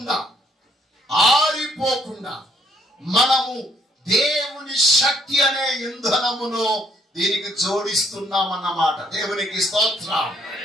ఆరిపోకుండా మనము దేవుని శక్తి అనే ఇంధనమును దీనికి జోడిస్తున్నామన్నమాట. దేవునికి స్తోత్రం.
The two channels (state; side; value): normal; both; correlation 0.68